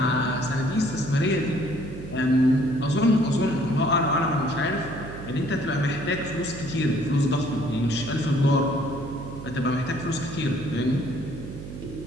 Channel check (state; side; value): noise; right; hum, 11 dB below the sound